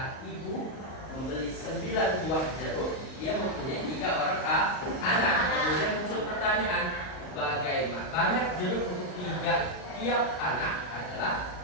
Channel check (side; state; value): right; late; 39 ms